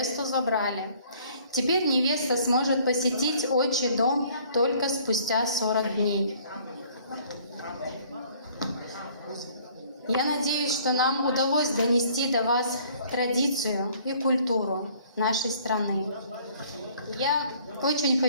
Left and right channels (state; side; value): inverted; both; correlation -0.57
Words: забрали. Теперь невеста сможет посетить отчий дом только спустя 40 дней. Я надеюсь, что нам удалось донести до вас традицию и культуру нашей страны. Я очень